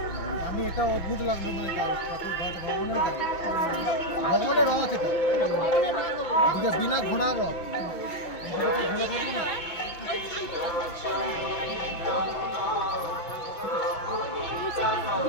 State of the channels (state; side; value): late; right; 6.0 ms